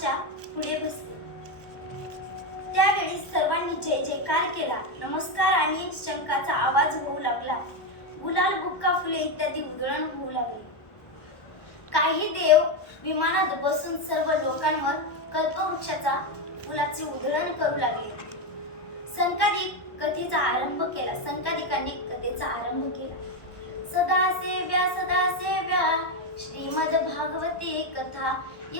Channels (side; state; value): right; late; 1.1 ms